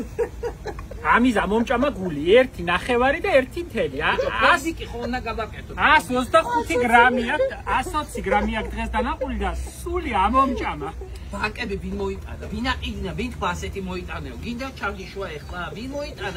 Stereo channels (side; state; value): both; identical; correlation 1.00